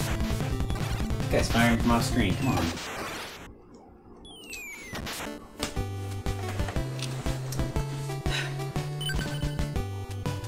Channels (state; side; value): identical; both; correlation 1.00